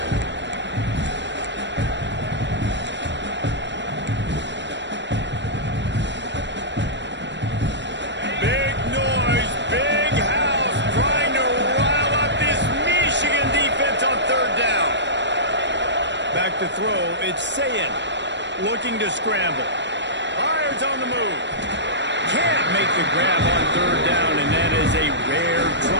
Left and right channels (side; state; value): left; late; 0.52 ms